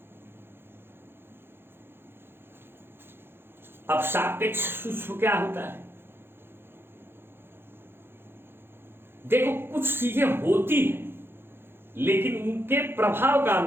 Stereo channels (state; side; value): late; left; 0.11 ms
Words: अब सापेक्ष सूक्ष्म क्या होता है? देखो, कुछ चीजें होती हैं लेकिन उनके प्रभाव का